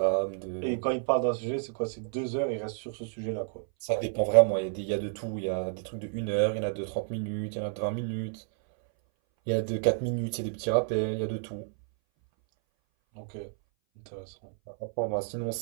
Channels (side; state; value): left; silent; 58 dB below the other